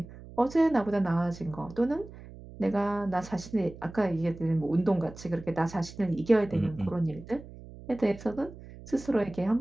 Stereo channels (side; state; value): right; noise; hum, 16 dB below the sound